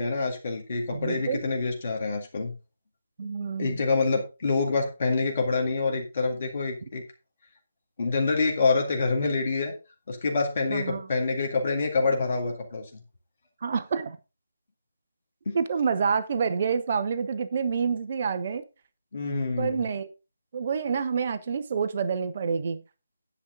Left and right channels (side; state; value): both; inverted; correlation -0.77